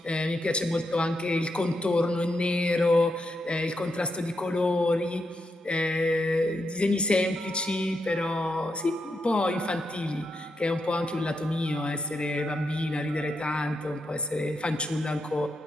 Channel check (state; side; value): normal; both; correlation 0.83